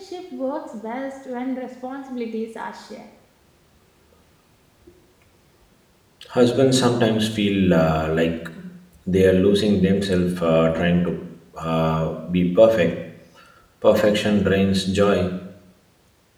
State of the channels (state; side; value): identical; both; correlation 1.00